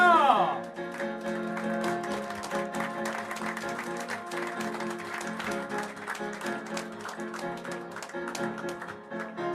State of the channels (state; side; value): identical; both; correlation 1.00